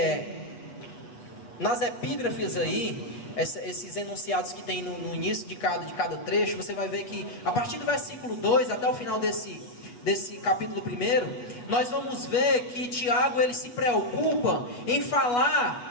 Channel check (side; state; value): right; late; 8.3 ms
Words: nas epígrafes aí, esses enunciados que tem no início de cada trecho, você vai ver que a partir do versículo 2 até o final desse capítulo 1, nós vamos ver que Tiago ele se preocupa em